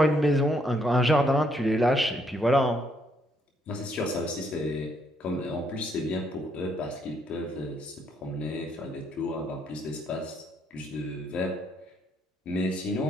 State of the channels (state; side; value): normal; both; correlation 0.71